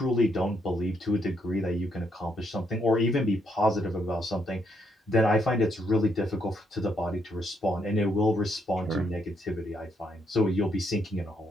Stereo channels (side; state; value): both; normal; correlation 0.75